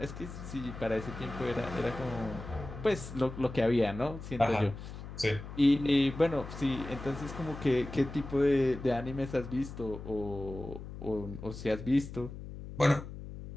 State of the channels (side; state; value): left; noise; hum, 11 dB below the sound